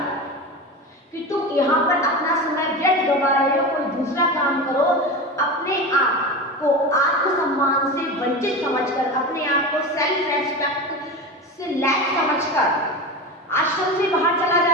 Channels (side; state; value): both; normal; correlation 0.25